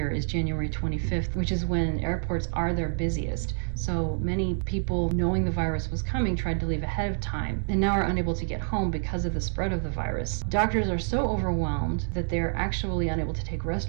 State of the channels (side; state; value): left; silent; 60 dB below the other